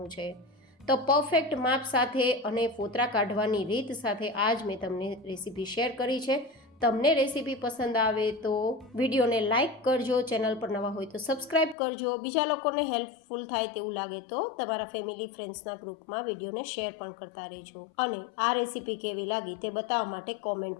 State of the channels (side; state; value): right; drops out; at 11.8 s